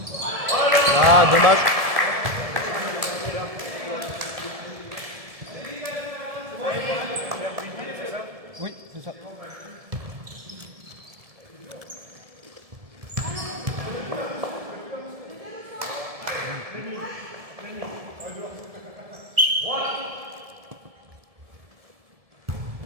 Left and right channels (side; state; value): left; late; 1.7 ms